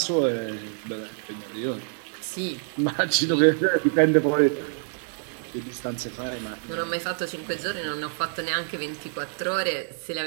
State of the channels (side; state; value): left; silent; digital silence